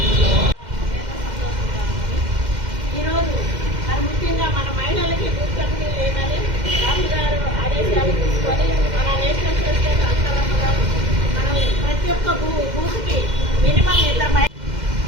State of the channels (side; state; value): left; late; 2.1 ms